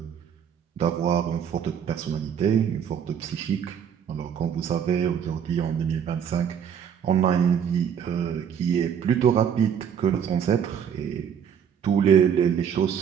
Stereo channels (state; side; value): quieter; left; 8.1 dB